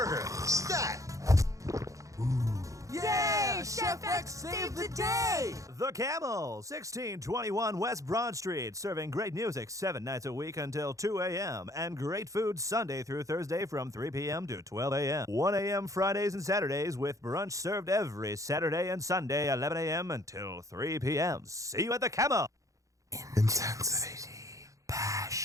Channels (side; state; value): left; late; 0.16 ms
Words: Stat. Yeah, Chef X saved the day. The Camel, 1621 West Broad Street, serving great music 7 nights a week until 2 a.m. and great food Sunday through Thursday from 3 p.m. to 12 a.m. 1 a.m. Fridays and Saturdays with brunch served every Saturday and Sunday 11 a.m. until 3 p.m. See you at The Camel. Intensity,